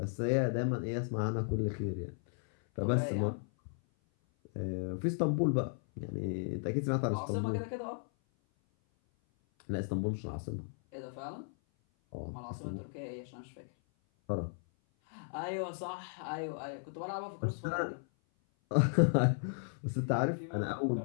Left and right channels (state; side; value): silent; right; 54 dB below the other